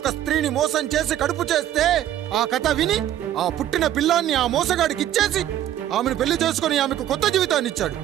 స్త్రీని మోసం చేసి కడుపు చేస్తే ఆ కథ విని ఆ పుట్టిన పిల్లాన్ని ఆ మోసగాడికి ఇచ్చేసి ఆమెను పెళ్లి చేసుకుని ఆమెకు కొత్త జీవితాన్ని ఇచ్చాడు.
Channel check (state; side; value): quieter; left; 11.9 dB